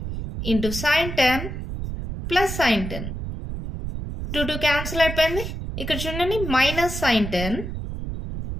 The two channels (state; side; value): noise; right; rumble, 6 dB below the sound